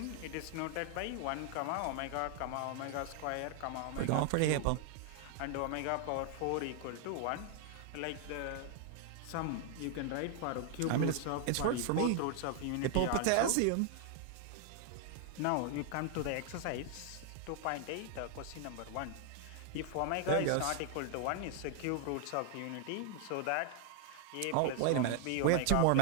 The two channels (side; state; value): both; different; correlation 0.00